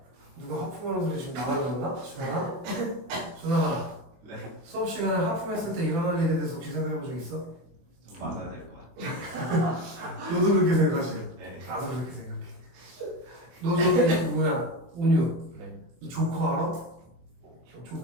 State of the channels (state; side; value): late; left; 24 ms